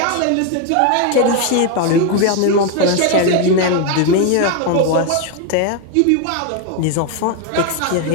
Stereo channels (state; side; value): different; both; correlation 0.01